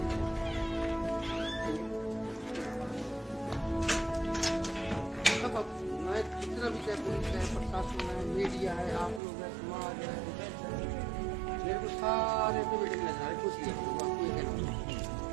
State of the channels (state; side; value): drops out; left; at 9.2 s